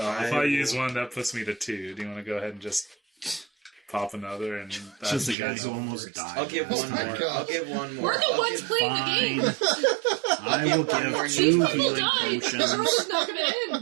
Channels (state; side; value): drops out; left; at 5.4 s